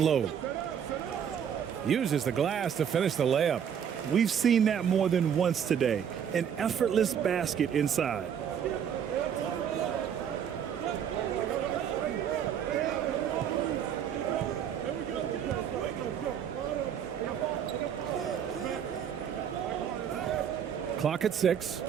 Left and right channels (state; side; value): quieter; left; 8.4 dB